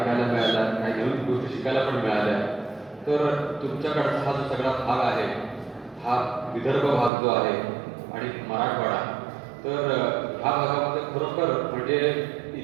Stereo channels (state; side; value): drops out; left; at 7.1 s